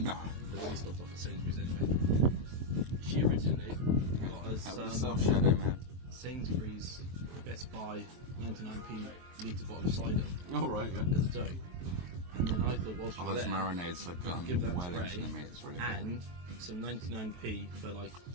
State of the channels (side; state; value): left; late; 23 ms